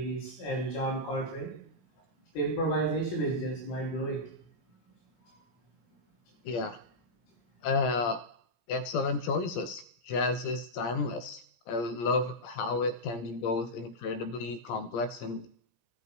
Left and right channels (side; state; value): right; late; 17 ms